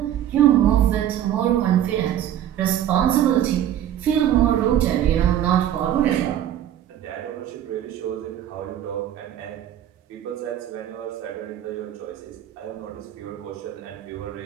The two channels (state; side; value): quieter; left; 11.1 dB